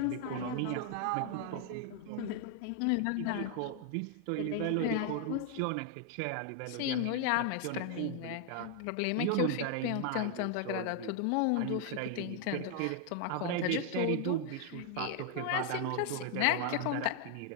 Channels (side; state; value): both; different; correlation 0.00